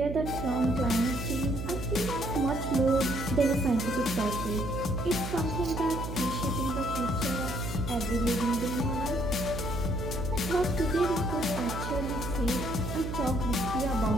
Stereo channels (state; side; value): noise; right; hum, 5 dB below the sound